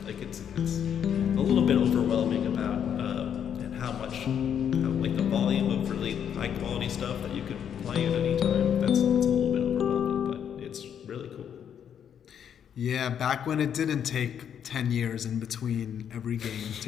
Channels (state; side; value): quieter; right; 8.6 dB